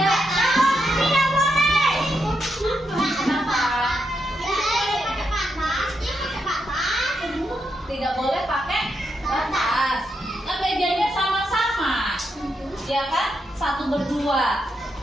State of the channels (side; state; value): both; normal; correlation 0.83